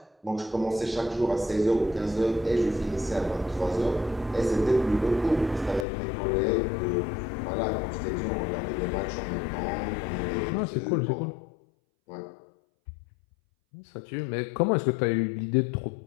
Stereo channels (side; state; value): right; drops out; at 5.9 s